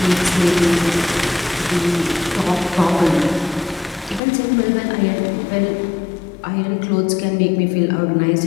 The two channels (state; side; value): drops out; right; at 4.2 s